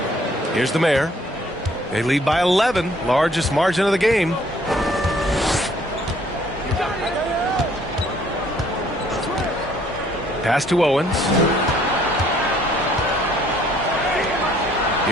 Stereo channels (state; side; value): normal; both; correlation 0.61